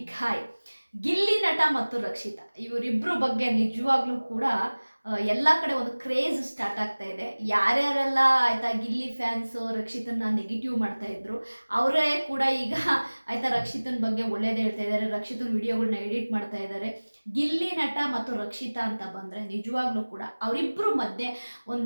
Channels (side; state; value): both; inverted; correlation -1.00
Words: ಹಾಯ್. ಗಿಲ್ಲಿ ನಟ ಮತ್ತು ರಕ್ಷಿತಾ ಇವರಿಬ್ಬರು ಬಗ್ಗೆ ನಿಜವಾಗ್ಲೂ ಕೂಡ ಎಲ್ಲ ಕಡೆ ಒಂದು ಕ್ರೇಜ್ ಸ್ಟಾರ್ಟ್ ಆಗ್ತಾ ಇದೆ. ಯಾರ್ಯಾರೆಲ್ಲ ಆಯ್ತಾ ಗಿಲ್ಲಿ ಫ್ಯಾನ್ಸು ರಕ್ಷಿತನ ನೆಗೆಟಿವ್ ಮಾಡ್ತಾ ಇದ್ರು ಅವರೇ ಕೂಡ ಈಗ ಆಯ್ತಾ ರಕ್ಷಿತನ ಬಗ್ಗೆ ಒಳ್ಳೇದು ಹೇಳ್ತಾ ಇದ್ದಾರೆ. ರಕ್ಷಿತನ ವಿಡಿಯೋಗಳನ್ನ ಎಡಿಟ್ ಮಾಡ್ತಾ ಇದ್ದಾರೆ. ಗಿಲ್ಲಿ ನಟ ಮತ್ತು ರಕ್ಷಿತಾ ಅಂತ ಬಂದರೆ ನಿಜವಾಗ್ಲೂ ಕೂಡ ಅವರಿಬ್ಬರು ಮಧ್ಯೆ